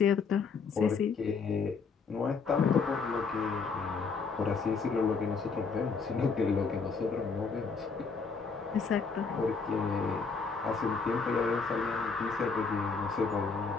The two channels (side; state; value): right; quieter; 4.9 dB